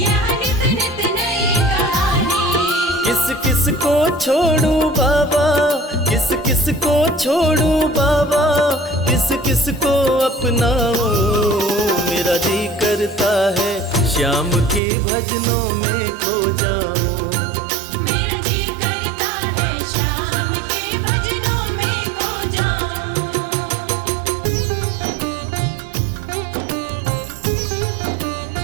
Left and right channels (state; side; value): drops out; left; at 14.8 s